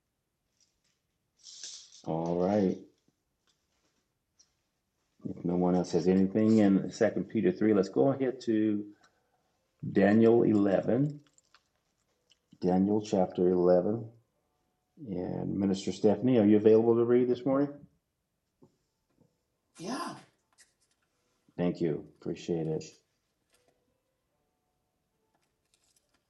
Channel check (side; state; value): both; identical; correlation 1.00